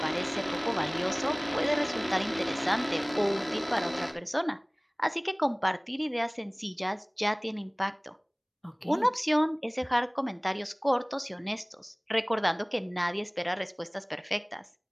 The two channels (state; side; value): identical; both; correlation 1.00